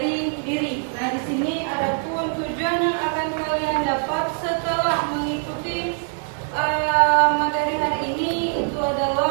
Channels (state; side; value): silent; left; 60 dB below the other